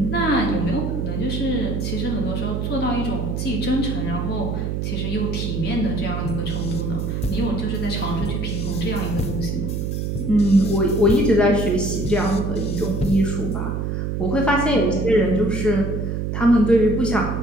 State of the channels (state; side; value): noise; right; hum, 2 dB below the sound